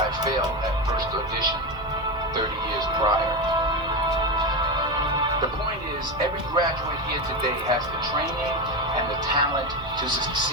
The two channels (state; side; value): noise; right; hum, 17 dB below the sound